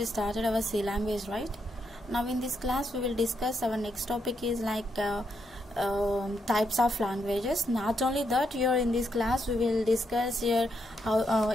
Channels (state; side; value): normal; both; correlation 0.79